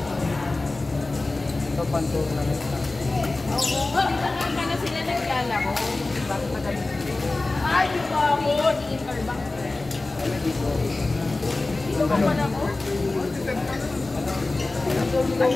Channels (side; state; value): right; quieter; 3.2 dB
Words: Ito pantur na rin. Oo, hindi na sila naglalaro. Diba? Ay, dito ako. Di-interbank. Dito. Dito ka pa na ko?